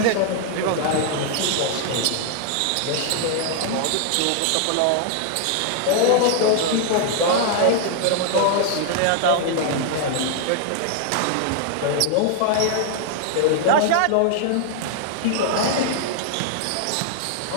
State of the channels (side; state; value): both; different; correlation 0.00